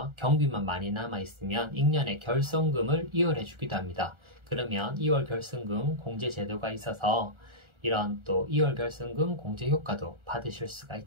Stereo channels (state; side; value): late; left; 1.4 ms